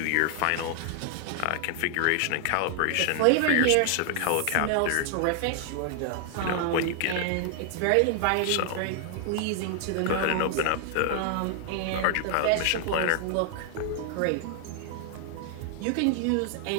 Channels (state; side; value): different; both; correlation 0.00